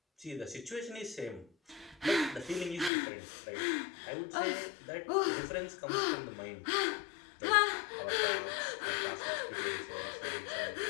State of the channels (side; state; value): right; drops out; at 2.9 s